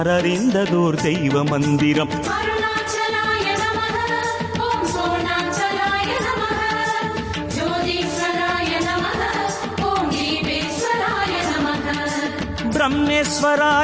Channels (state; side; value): identical; both; correlation 1.00